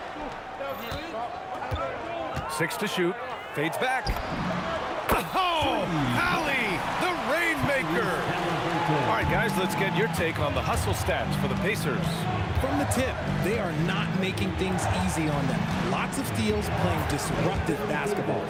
6 to shoot. Fades back. Oh, Hallie, the Rainmaker. All right, guys, let's get your take on the hustle stats for the Pacers. From the tip, they are not making things easy on them. Lots of steals, playing disruptive basketball.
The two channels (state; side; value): identical; both; correlation 1.00